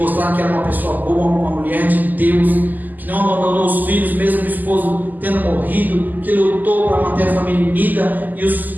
que era uma pessoa boa, uma mulher de Deus, que não abandonou os filhos, mesmo o esposo tendo morrido, que lutou para manter a família unida, e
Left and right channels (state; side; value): late; left; 0.084 ms